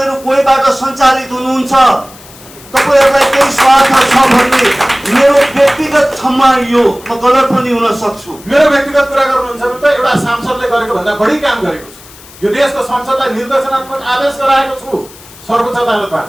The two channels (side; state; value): left; noise; hiss, 21 dB below the sound